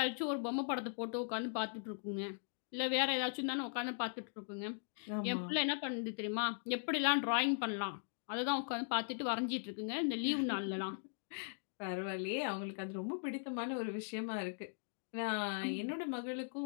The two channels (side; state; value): right; silent; digital silence